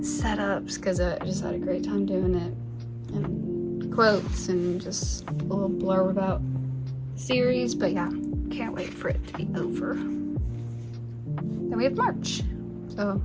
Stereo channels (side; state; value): both; identical; correlation 1.00